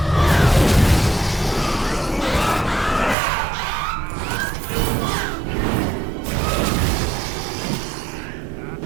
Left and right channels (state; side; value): drops out; left; at 3.2 s